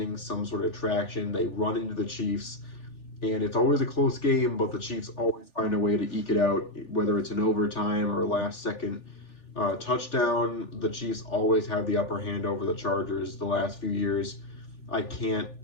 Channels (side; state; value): right; late; 3.4 ms